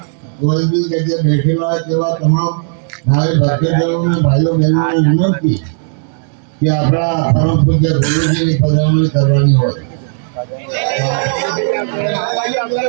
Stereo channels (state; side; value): silent; left; 61 dB below the other